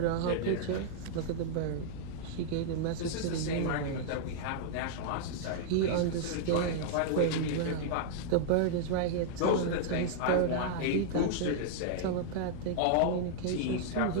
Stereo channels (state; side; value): different; both; correlation -0.01